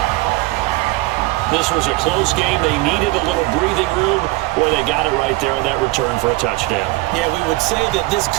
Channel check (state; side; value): quieter; left; 21.3 dB